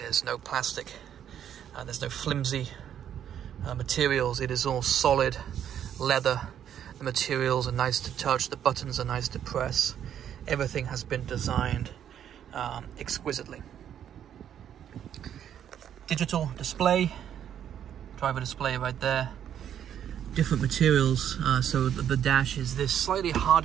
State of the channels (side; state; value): left; quieter; 9.7 dB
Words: no plastic, there's no flimsy materials. It is all solid leather. The materials are nice to touch, the buttons are nice to press. Everything has been designed exquisitely. Digital display, driver display right there. Different materials, so the dash is this slightly